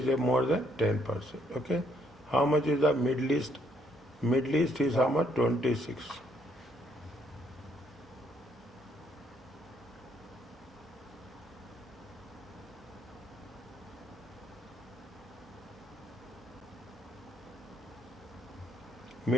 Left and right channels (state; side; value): normal; both; correlation 0.70